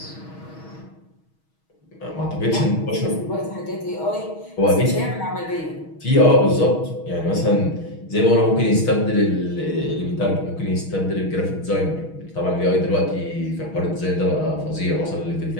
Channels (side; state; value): right; late; 6.3 ms